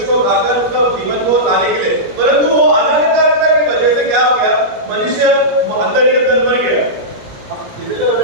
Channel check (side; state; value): left; late; 17 ms